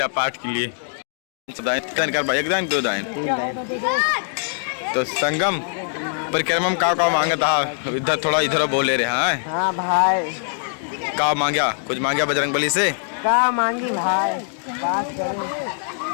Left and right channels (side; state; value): right; silent; digital silence